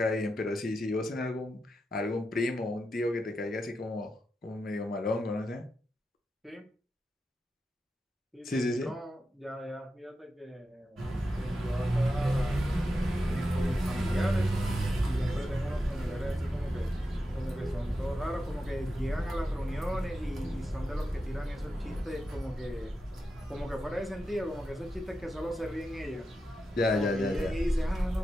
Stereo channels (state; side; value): normal; both; correlation 0.88